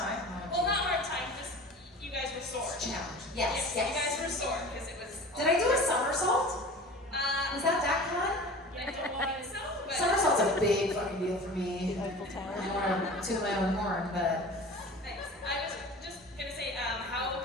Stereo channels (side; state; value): both; normal; correlation 0.38